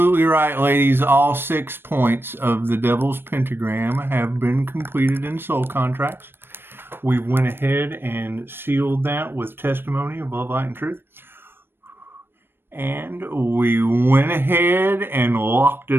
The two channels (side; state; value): left; late; 0.10 ms